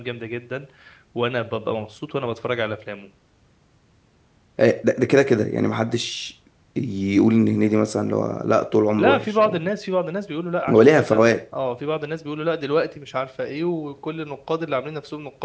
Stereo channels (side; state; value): both; identical; correlation 1.00